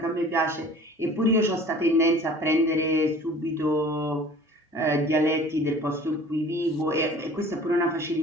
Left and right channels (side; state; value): both; normal; correlation 0.46